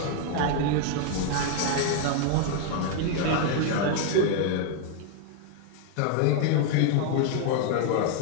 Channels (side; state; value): both; different; correlation 0.00